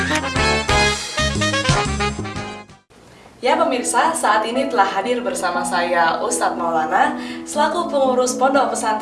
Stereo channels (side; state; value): both; identical; correlation 1.00